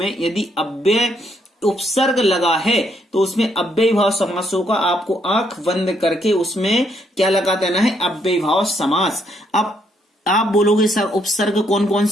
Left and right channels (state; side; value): normal; both; correlation 0.73